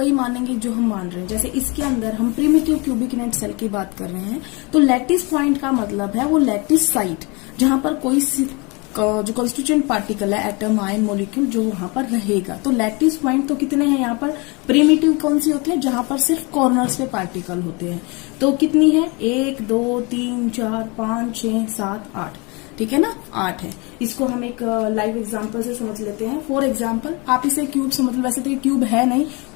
मानेंगे जो हम मान रहे हैं। जैसे इसके अंदर हम प्रिमिटिव क्यूबिक यूनिट सेल की बात कर रहे हैं, तो लेटिस पॉइंट का मतलब है वो लेटिस साइट जहां पर कोई जो कॉन्स्टिट्यूएंट पार्टिकल है, एटम, आयन, मॉलिक्यूल, जो वहां पर रहेगा। तो लैटिस पॉइंट तो कितने हैं यहाँ पर? प्रिमिटिव कौन सी होती है? जहां पर सिर्फ कॉर्नर्स पे पार्टिकल होते हैं। तो कितनी है? 1 2 3 4 5 6 7 8। ठीक है ना, 8 है। इसको हम एक लाइव एग्जांपल से समझ लेते हैं। फॉर एग्जांपल, आप इसे क्यूब समझ लो। वैसे तो ये क्यूब है नहीं,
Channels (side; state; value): right; quieter; 28.5 dB